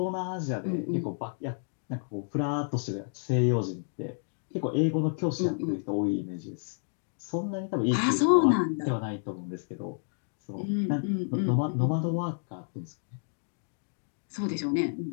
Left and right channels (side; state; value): right; silent; digital silence